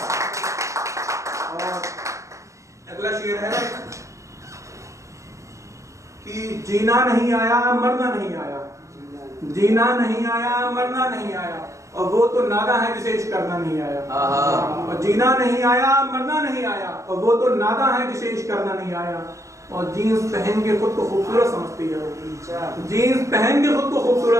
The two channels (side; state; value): left; late; 0.15 ms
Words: और अगला शेर है कि जीना नहीं आया मरना नहीं आया, जीना नहीं आया मरना नहीं आया, और वो तो नादा है जिसे इश्क करना नहीं आया। और जीना नहीं आया मरना नहीं आया, और वो तो नादा है जिसे इश्क करना नहीं आया। और जीन्स पहन के खुद को खूबसूरत समझती है, जीन्स पहन के खुद को